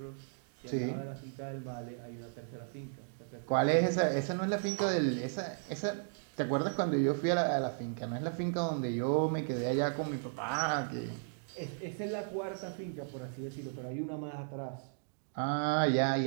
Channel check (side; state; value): left; silent; digital silence